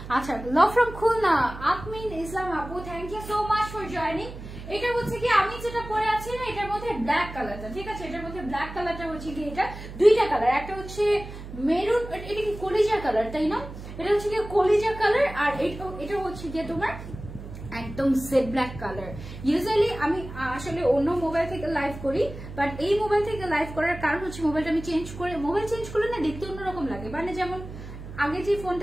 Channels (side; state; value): right; noise; hum, 12 dB below the sound